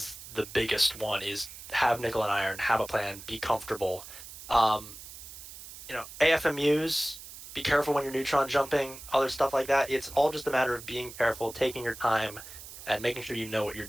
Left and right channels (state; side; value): noise; right; hiss, 14 dB below the sound